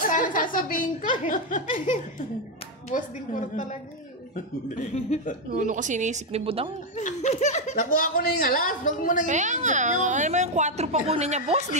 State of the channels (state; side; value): normal; both; correlation 0.04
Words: sasabihin ko eh. Boss din ko talaga eh. Ano kasi iniisip ni Budang? Nakuha ko na yung alas. Huwag mo nang Kaya nga, ano mo yung 4 pa kunin niya, boss?